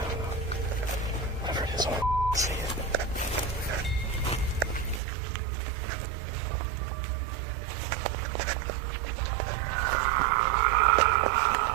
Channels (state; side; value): drops out; left; at 5.0 s